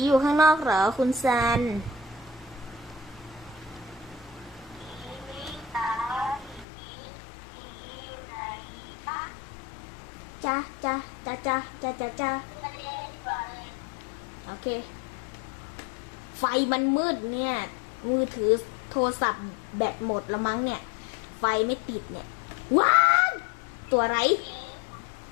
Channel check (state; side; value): drops out; right; at 6.7 s